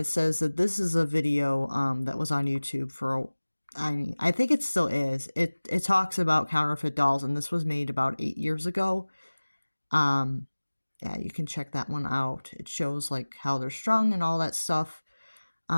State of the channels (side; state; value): both; inverted; correlation -1.00